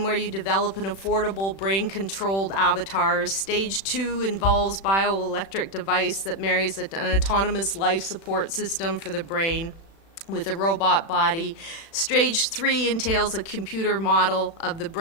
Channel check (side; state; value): right; late; 36 ms